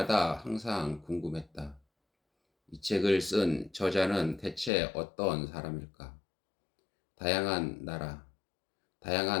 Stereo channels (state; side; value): drops out; right; at 4.7 s